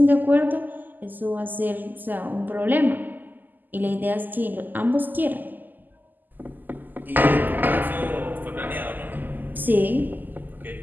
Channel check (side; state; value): left; late; 0.087 ms